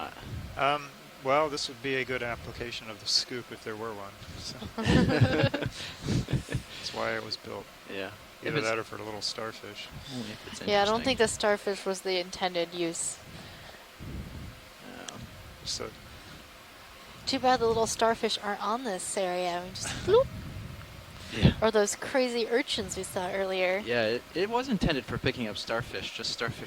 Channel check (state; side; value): identical; both; correlation 1.00